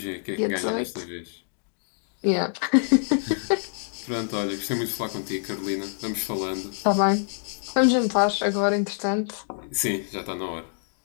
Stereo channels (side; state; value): right; silent; digital silence